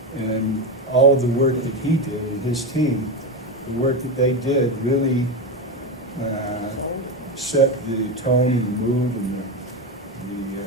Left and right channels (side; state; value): both; normal; correlation 0.14